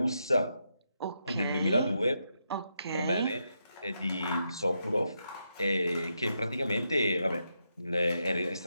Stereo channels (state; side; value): inverted; both; correlation -0.83